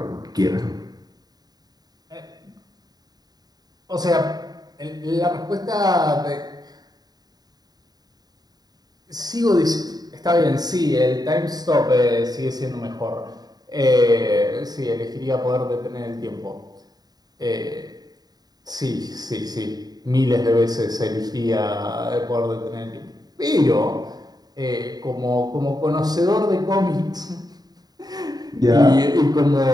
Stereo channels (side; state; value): left; late; 0.19 ms